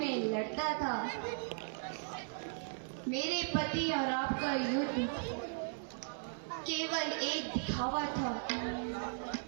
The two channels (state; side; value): silent; left; 53 dB below the other